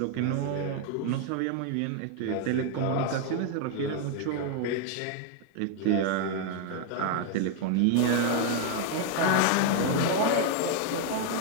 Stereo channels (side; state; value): both; different; correlation 0.00